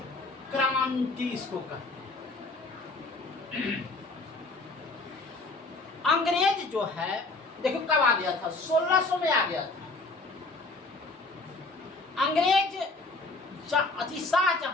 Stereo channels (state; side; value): quieter; right; 3.3 dB